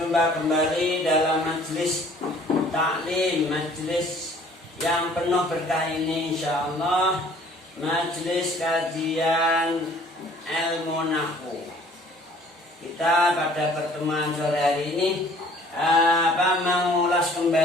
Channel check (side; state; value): both; normal; correlation 0.54